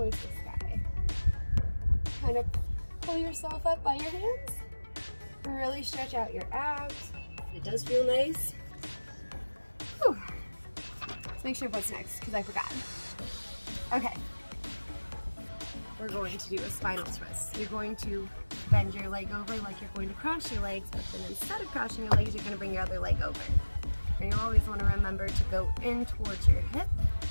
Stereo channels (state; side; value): inverted; both; correlation -1.00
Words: the sky. Kind of pull yourself up by your hands. Really stretch out your abs. It does feel nice. Whew. Let's make sure what's next, because I forgot. Okay. We're going to do a spinal twist. You're going to bend your leg over like you're going to cross your legs, but then instead of crossing your legs, you're going to bring your other leg over. And you always want to remember to go in towards your hip.